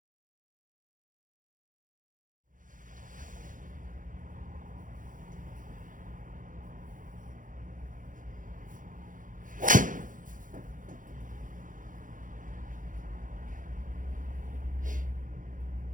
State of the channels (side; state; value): left; late; 0.38 ms